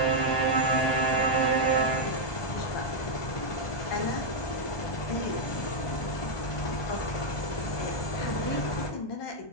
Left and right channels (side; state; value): right; late; 1.2 ms